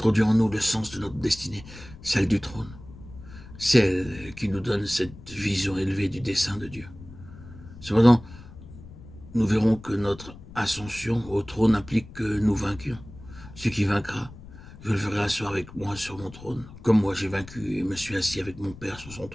en nous le sens de notre destinée, celle du trône, celle qui nous donne cette vision élevée du dessein de Dieu. Cependant, nous verrons que notre ascension au trône implique que nous vainquions. Ce qui vaincra, je le ferai asseoir avec moi sur mon trône, comme moi j'ai vaincu et me suis assis avec mon Père sur son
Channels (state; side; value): noise; left; rumble, 17 dB below the sound